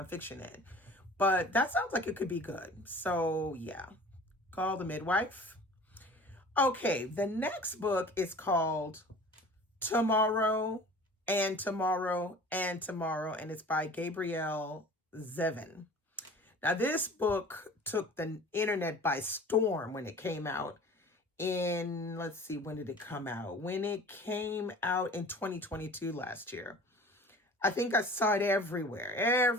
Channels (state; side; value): normal; both; correlation 0.43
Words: in. But that sounds like it could be good. So yeah, Call the Midwife. Okay, the next book is called Tomorrow and Tomorrow and Tomorrow, and it's by Gabrielle Zevin. Now, this book took the internet by storm when it came out in, let's see, when did it come out? When it came out in 2022 last year. I think I saw it everywhere.